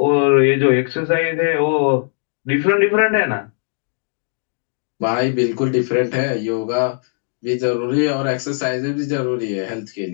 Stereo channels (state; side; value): silent; right; digital silence